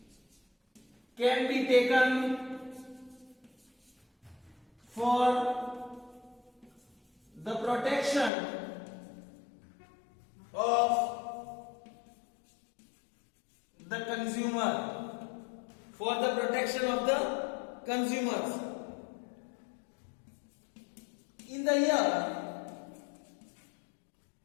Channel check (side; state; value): right; drops out; at 8.3 s